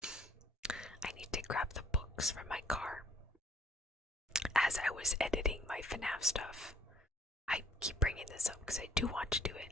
I need to grab the books from my car. As I was editing my FNAF stuff, I keep bringing this up because I do want to do it.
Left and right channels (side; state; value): both; normal; correlation 0.61